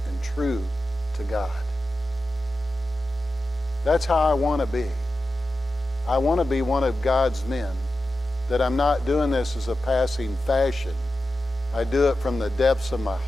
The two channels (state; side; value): normal; both; correlation 0.92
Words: and true to God. That's how I want to be. I want to be one of God's men. That I'm not doing this as a passing fashion. I do it from the depths of my